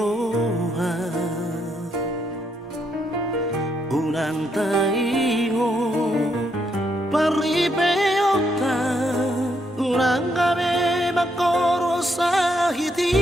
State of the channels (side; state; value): both; normal; correlation 0.76